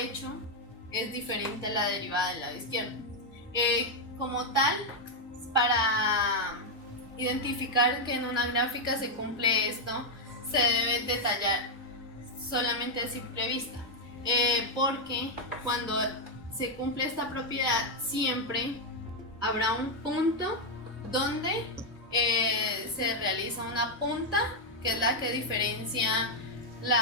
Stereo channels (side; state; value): both; normal; correlation 0.00